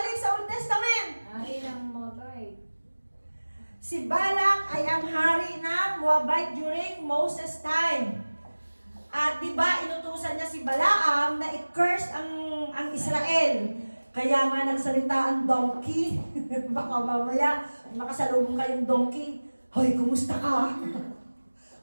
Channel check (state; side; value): inverted; both; correlation -1.00